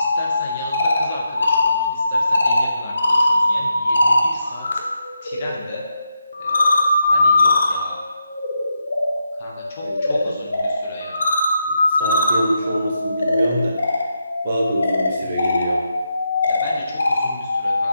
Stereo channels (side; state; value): both; inverted; correlation -0.84